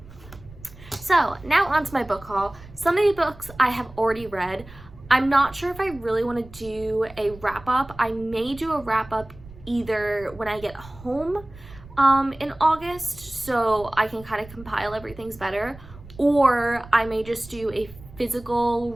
So now on to my book haul. Some of the books I have already read. I'm not sure if I really want to do a wrap up. I may do a wrap up either when I get home in August, so I can kind of compile everything's better, or I may just do a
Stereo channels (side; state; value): right; noise; rumble, 19 dB below the sound